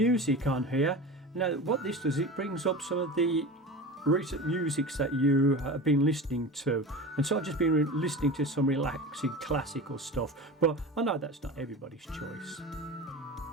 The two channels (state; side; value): normal; both; correlation 0.31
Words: on here. Now what this does, it brings up some of the recent musics that you have been listening to, and so I've just been listening to some relaxing classical stuff, but I know that's not everybody's choice.